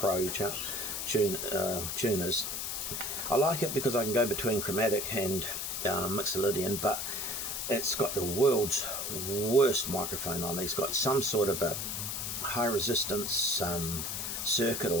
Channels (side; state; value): left; noise; hiss, 3 dB below the sound